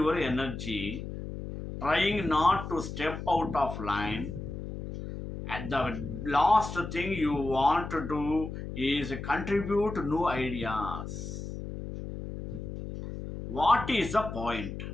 energy trying not to step out of line, and the last thing you want to do is contribute new ideas. What is the point?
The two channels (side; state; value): left; noise; hum, 8 dB below the sound